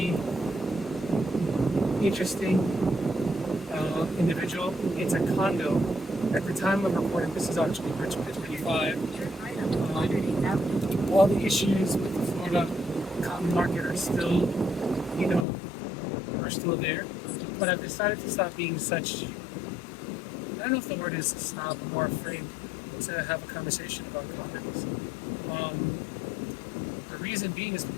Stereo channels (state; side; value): drops out; right; at 15.5 s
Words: interesting individual. It's a condo. At the time of recording, this is October 2025. All the issues with the Florida cotton market are still, you know, are still there. But I've decided to stop being such, I don't know if the word is stop or afraid to have a conversation about condos. Um, the reason being is